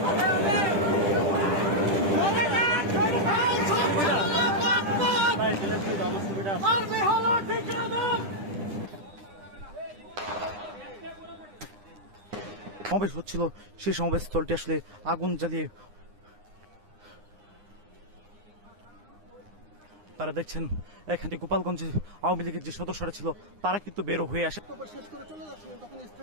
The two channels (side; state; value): left; late; 9.8 ms